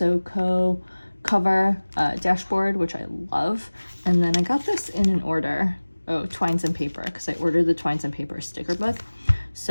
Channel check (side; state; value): both; inverted; correlation -1.00